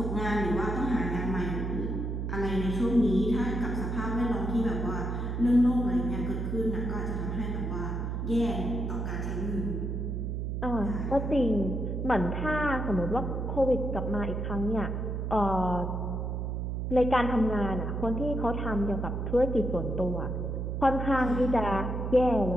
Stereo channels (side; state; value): right; noise; hum, 2 dB below the sound